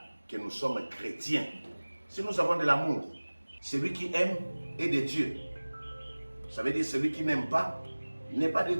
que nous sommes chrétiens si nous avons de l'amour. Celui qui aime est de Dieu. Ça veut dire celui qui n'aime pas n'est pas de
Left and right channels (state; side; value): inverted; both; correlation -1.00